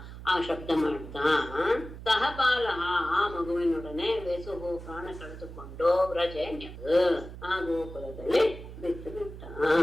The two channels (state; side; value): noise; right; hum, 13 dB below the sound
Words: ಆ ಶಬ್ದ ಮಾಡ್ತಾ, ಸಹಬಾಲ ಆ ಮಗುವಿನೊಡನೆ ವೇಸುಹು ಪ್ರಾಣ ಕಳೆದುಕೊಂಡು ವ್ರಜೆ ಆ ಗೋಕುಲದಲ್ಲಿ ಬಿಟ್ಟು ಬಿಟ್ಟ.